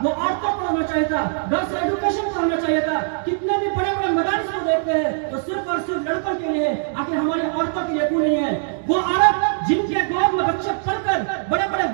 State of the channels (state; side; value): silent; left; digital silence